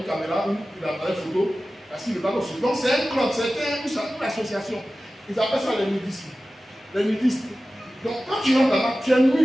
caméra ou d'appareil photo, parce qu'il ne va pas aussi. Donc c'est un club, c'est une association. Ils appellent ça les nudistes. Les nudistes. Donc quand tu rentres là-bas, tu es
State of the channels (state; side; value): normal; both; correlation 0.95